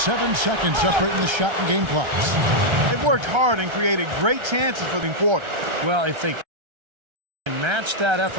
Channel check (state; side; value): late; left; 1.3 ms